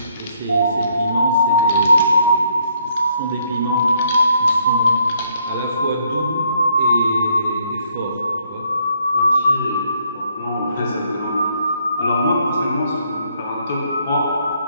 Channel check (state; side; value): inverted; both; correlation -0.70